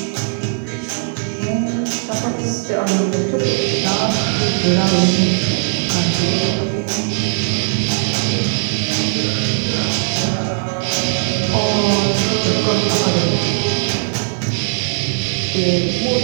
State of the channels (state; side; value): silent; left; 62 dB below the other